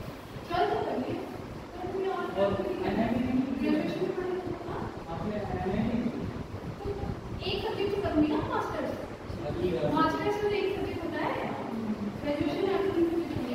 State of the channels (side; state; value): both; identical; correlation 1.00